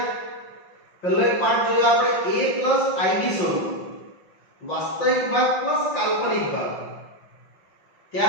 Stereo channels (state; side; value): late; right; 5.7 ms